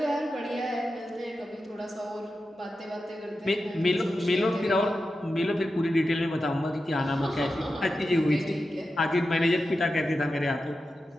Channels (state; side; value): normal; both; correlation 0.91